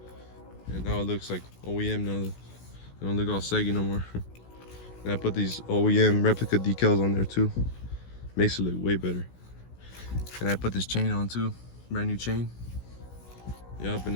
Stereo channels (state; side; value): late; right; 16 ms